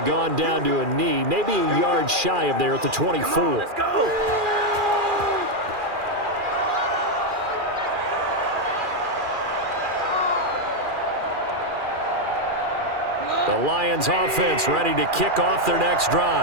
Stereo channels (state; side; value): late; left; 2.4 ms